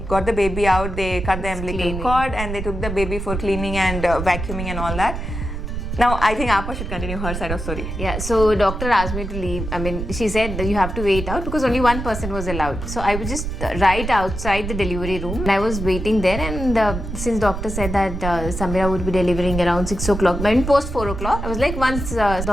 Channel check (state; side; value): noise; right; rumble, 5 dB below the sound